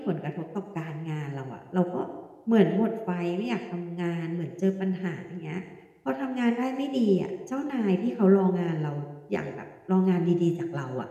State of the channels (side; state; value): both; identical; correlation 1.00